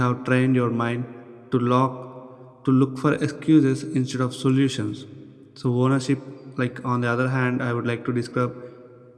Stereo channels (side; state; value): both; identical; correlation 1.00